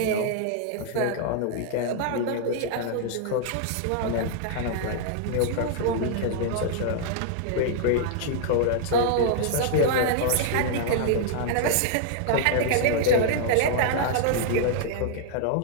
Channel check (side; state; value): both; different; correlation -0.01